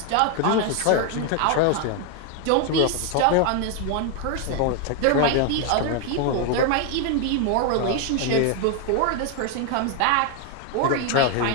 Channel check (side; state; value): both; different; correlation 0.01